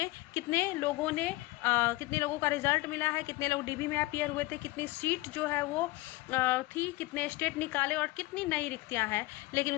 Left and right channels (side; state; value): right; quieter; 19.8 dB